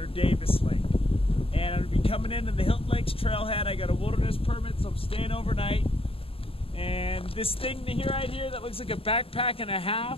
Davis Lake. And I'm going to be coming into the Hilton Lakes Trailhead. I got a wilderness permit, so I'm staying overnight. And this thing right here that looks like a backpack and a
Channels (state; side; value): late; right; 0.27 ms